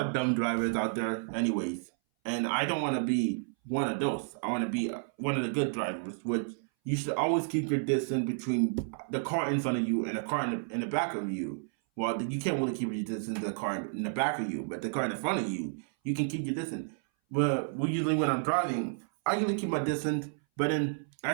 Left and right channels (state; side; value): silent; left; 57 dB below the other